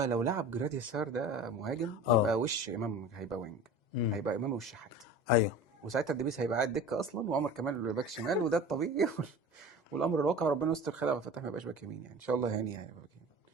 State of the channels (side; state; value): right; late; 2.0 ms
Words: لو لعب جرادي سار ده مهاجم، اه. يبقى وش امام هيبقى وينج، امم. هيبقى امام والشحات. ايوه. وساعتها الدبيس هيبقى قاعد دكه اصلا، وعمر كمال باك شمال، وده الطبيعي. والامر الواقع ربنا يستر، خير عبد الفتاح ما يبقاش باك يمين يعني، ان شاء الله يعني هيبقى باك يمين.